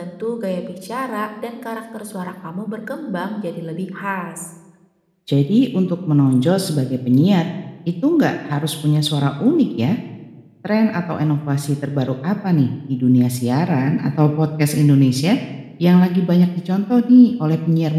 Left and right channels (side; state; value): both; identical; correlation 1.00